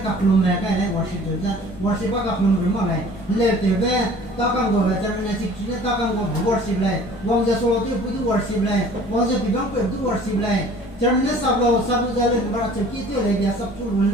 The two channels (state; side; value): normal; both; correlation 0.49